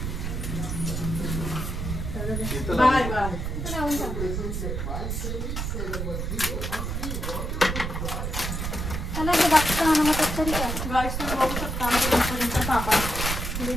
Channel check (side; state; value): right; noise; rumble, 3 dB below the sound